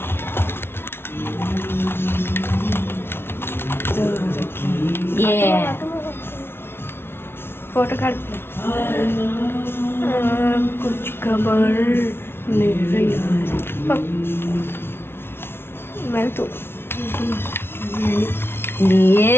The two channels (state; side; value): late; right; 0.11 ms